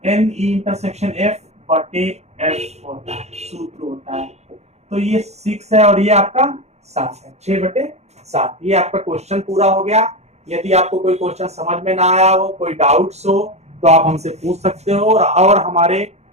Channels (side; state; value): left; late; 0.32 ms